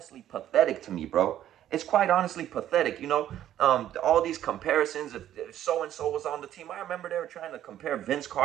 pathetic to me, bro. It's quite honestly pathetic, all these comparisons. If so and so was on the team, I remember they were trying to compare Vince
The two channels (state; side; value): quieter; left; 11.7 dB